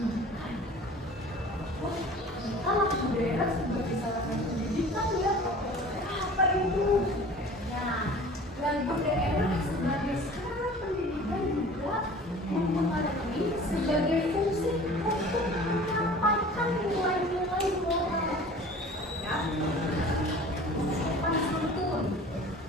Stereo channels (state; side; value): normal; both; correlation 0.44